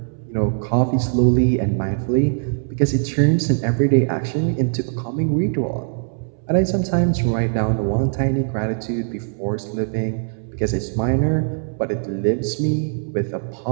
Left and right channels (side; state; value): left; silent; 63 dB below the other